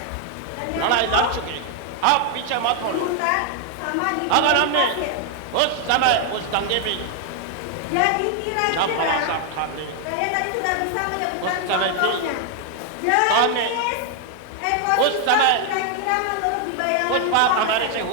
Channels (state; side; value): different; both; correlation 0.00